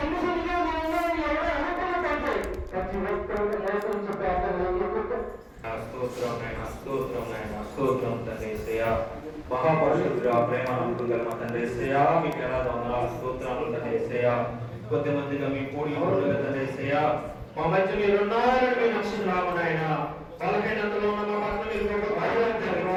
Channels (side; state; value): both; identical; correlation 1.00